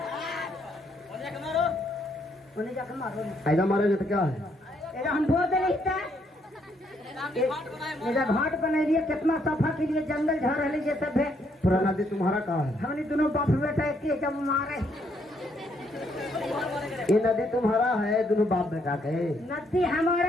उन्हें जाकर मारो ऐसा मारेंगे तो क्या है? एजा हम बोर दे ले था एजा घाट बना रही है। कितना सफा के लिए जंगल झड़ रही ये सब है। पूरा नदी तुम्हारा कहाँ है? हमने दोनों बाप बेटा एक जब मारे। ये नदी तुम्हारा है? दोनों बाप बेटा के? नदी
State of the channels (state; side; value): normal; both; correlation 0.72